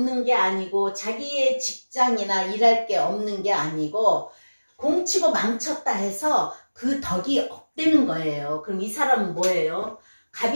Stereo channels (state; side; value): inverted; both; correlation -1.00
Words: 게 아니고, 자기의 직장이나 일할 게 없는 게 아니고, 공치고 망쳤다 해서 그 덕이 업되는 거예요. 그럼 이 사람은 뭐예요?